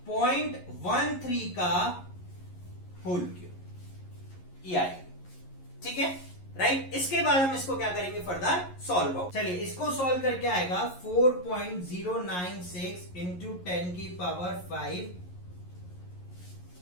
0.13 का होल क्यूब, ये आएगी, ठीक है, राइट। इसके बाद हम इसको क्या करेंगे, फर्दर सॉल्व आउट। चलिए, इसको सॉल्व करके आएगा 4.096 इंटू 10 की पावर 5,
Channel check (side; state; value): right; late; 11 ms